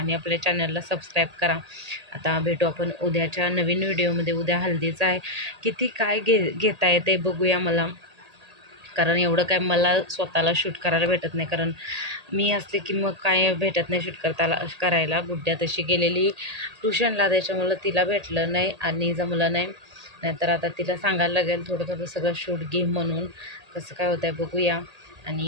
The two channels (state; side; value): late; left; 1.8 ms